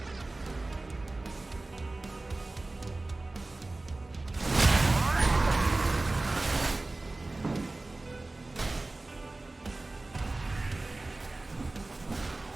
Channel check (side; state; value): left; quieter; 3.0 dB